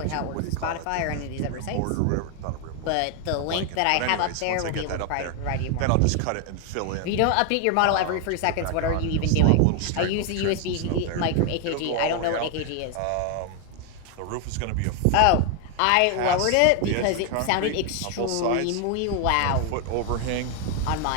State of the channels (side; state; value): both; different; correlation 0.01